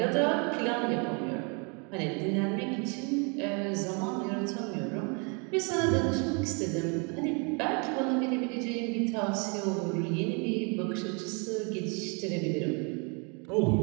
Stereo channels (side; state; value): left; quieter; 34.1 dB